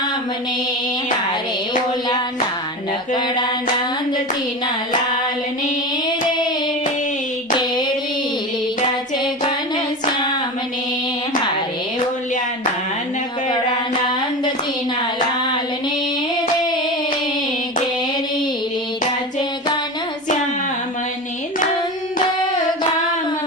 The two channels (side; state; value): both; normal; correlation 0.26